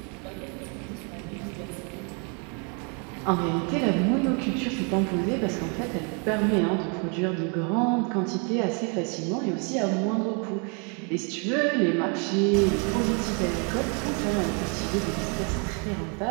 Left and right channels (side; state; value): left; quieter; 36.5 dB